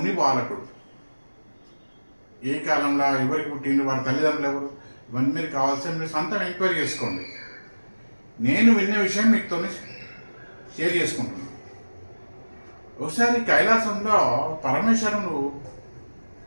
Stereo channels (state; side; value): inverted; both; correlation -1.00